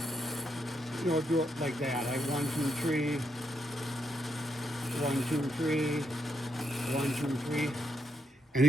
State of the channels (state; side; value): normal; both; correlation 0.79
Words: you know, do it like that. I 1, 2, 3, 1, 2, 3. 1, 2, 3. And